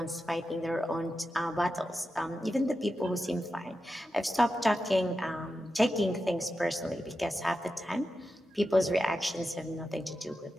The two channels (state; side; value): normal; both; correlation 0.90